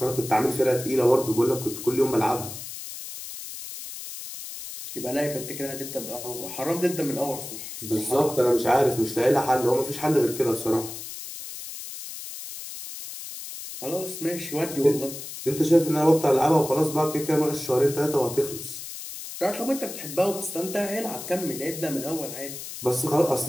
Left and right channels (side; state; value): left; noise; hiss, 10 dB below the sound